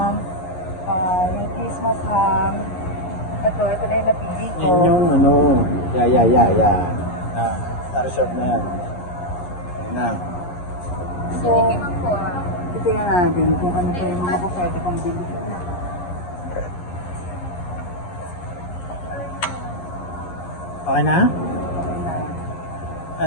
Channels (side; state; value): right; late; 11 ms